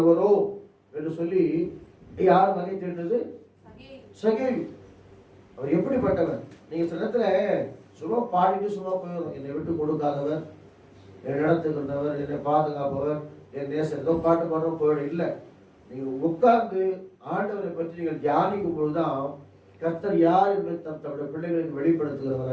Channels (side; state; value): both; identical; correlation 1.00